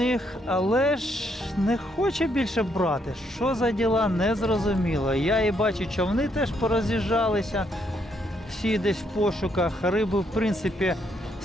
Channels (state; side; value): normal; both; correlation 0.74